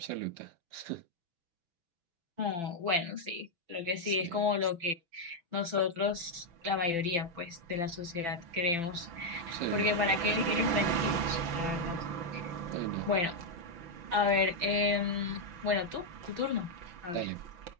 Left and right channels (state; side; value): late; left; 5.9 ms